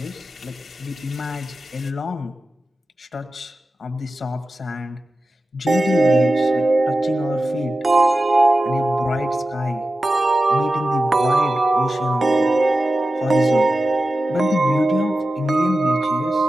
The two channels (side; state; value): both; normal; correlation 0.93